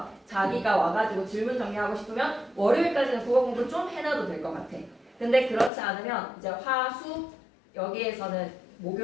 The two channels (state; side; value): drops out; right; at 5.7 s